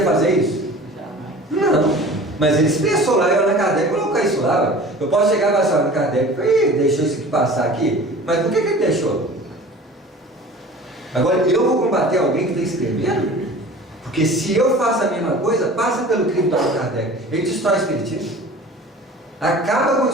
fazer isso? Não. Mas ele expressou lá, eu na Kardec colocou isso lá. Eu posso chegar e falar, Kardec, deixou isso aqui passar aqui, mas por que ele deixou? Agora, eu vou combater alguém que está escrevendo? Porque se eu faço a mesma coisa, passa pelo crime do Allan Kardec. Ele destrói o Espiritismo. Acaba com o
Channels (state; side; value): normal; both; correlation 0.42